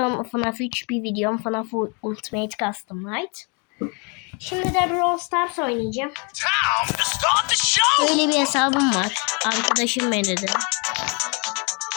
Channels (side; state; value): right; quieter; 33.9 dB